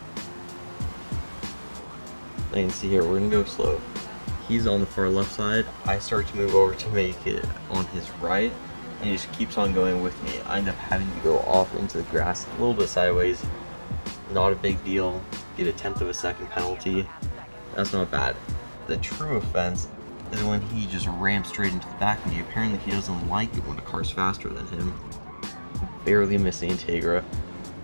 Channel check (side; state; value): both; inverted; correlation -1.00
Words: You can see here, we're going to go slow. He's on the far left side. I start to move over to make it on his right, and he just keeps on going with me. I end up having to go off into the grass a little bit sideways. Not a big deal. Get a 1/10 of a second penalty. That's not bad. The true offense is when he just rams straight into the back of me. Apparently he doesn't like it when a car's faster than him. Barely missing Integra.